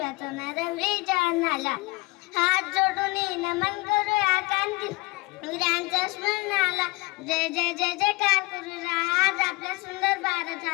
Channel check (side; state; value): right; quieter; 23.4 dB